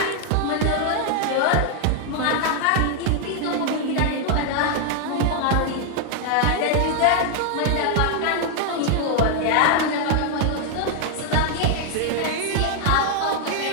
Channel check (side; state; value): both; different; correlation 0.00